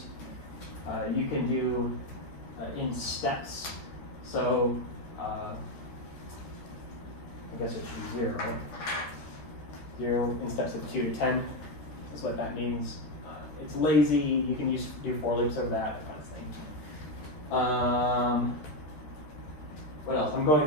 You can do in steps. So I guess it should be 0, right? 0 in steps of 2 to 10 is what that means. It's lazy, you can do for loops over that kind of thing. What else? I'm going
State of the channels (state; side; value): late; right; 13 ms